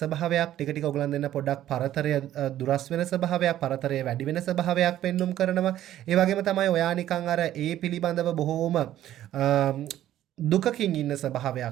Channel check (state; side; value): quieter; left; 12.6 dB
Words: ටික ටික ඔයගලන් දෙන්න පොඩ්ඩක් පරතරය දුරස් වෙන ස්වභාවයක්, පරතරය වැඩි වෙන ස්වභාවයක් පෙන්눔 කරනවා. ඒ වගේම තමයි ඔයා නිකන් අර ඒ පිළිබඳව බොහෝම දුකකින් ඉන්න